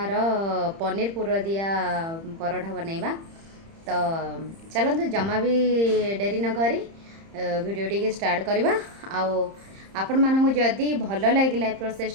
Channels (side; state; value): left; late; 30 ms